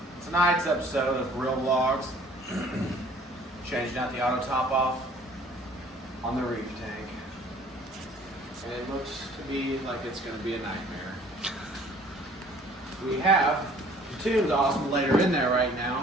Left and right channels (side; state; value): both; normal; correlation 0.54